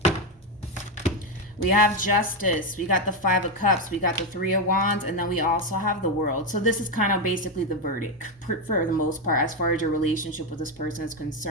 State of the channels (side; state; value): both; normal; correlation 0.08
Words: We have Justice, we got the Five of Cups, we got the Three of Wands, and then we also have the World. So this is kind of basically the verdict for the most part as far as your relationship with this person is